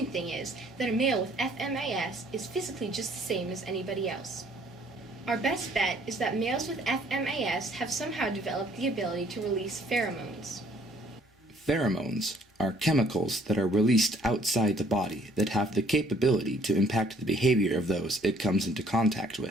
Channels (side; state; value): both; normal; correlation 0.61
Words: thing is that a male with FMAS is physically just the same as anybody else. Our best bet is that males with FMAS have somehow developed the ability to release pheromones. Pheromones are chemicals that are released outside the body that have the capability to impact the behavior of those it comes into contact